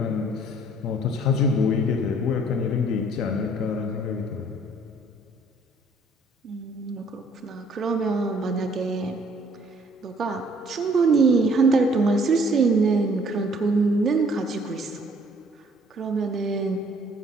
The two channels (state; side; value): normal; both; correlation 0.60